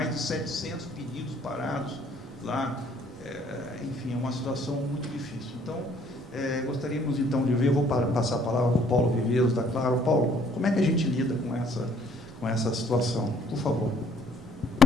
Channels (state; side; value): normal; both; correlation 0.61